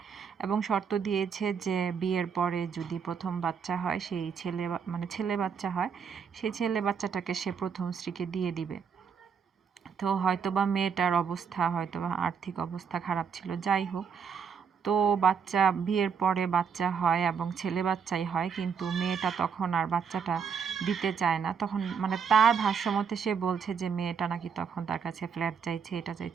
এবং শর্ত দিয়েছে যে বিয়ের পরে যদি প্রথম বাচ্চা হয়, সেই ছেলে বাচ্চা হয়, সেই ছেলে বাচ্চাটাকে সে প্রথম স্ত্রীকে দিয়ে দিবে। তো হয়তোবা মেয়েটার অবস্থা, হয়তোবা আর্থিক অবস্থা খারাপ ছিল, যাই হোক। তো বিয়ের পরে বাচ্চা হয় এবং ছেলে বাচ্চাই হয়, কিন্তু মেয়েটা তখন আর বাচ্চাটা দিতে চায় না। তখন তার ভাষ্যমতে সে বলছে যে মেয়েটা নাকি তখন তার কাছে ফ্ল্যাট চাইছে, এটা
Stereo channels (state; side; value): quieter; left; 6.6 dB